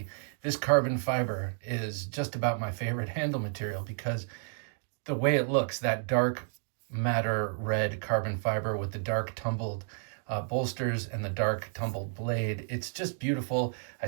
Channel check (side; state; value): left; silent; digital silence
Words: this carbon fiber is just about my favorite handle material because the way it looks, that dark matter red carbon fiber with the dark tumbled bolsters and the dark tumbled blade, it's just beautiful. I